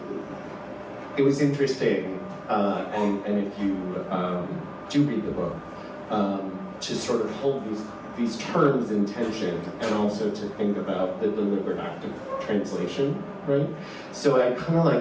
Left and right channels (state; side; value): identical; both; correlation 1.00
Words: it was interesting, and if you do read the book, to sort of hold these terms in tension, and also to think about the deliberate act of translation, right? So I kind of